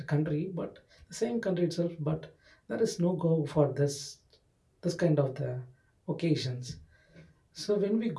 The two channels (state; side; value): identical; both; correlation 1.00